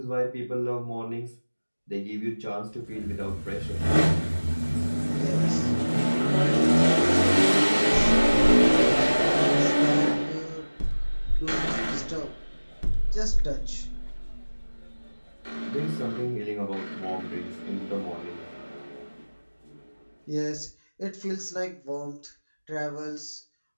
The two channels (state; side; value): inverted; both; correlation -1.00